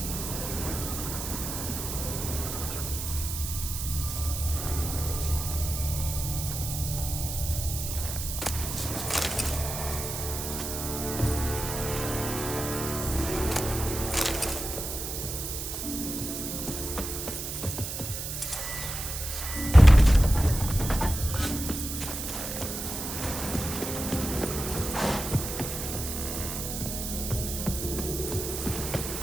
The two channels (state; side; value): noise; right; hiss, 5 dB below the sound